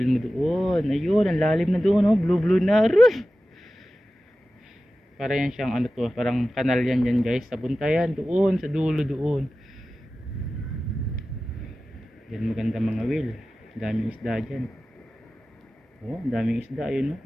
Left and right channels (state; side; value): normal; both; correlation 0.95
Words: mo doon. Ayun, ang lalim na doon, oh. Blue na. Aray! Para yan siyang ano to, parang kanal yan guys. Sa buntayan doon, sa dulo doon. Yan maganda mga will. Daming isda dyan. Oh, daming isda. Ayun, oh.